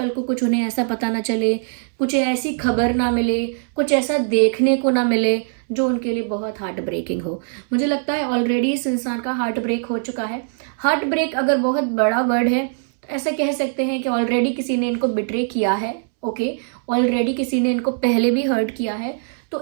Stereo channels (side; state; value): left; silent; 65 dB below the other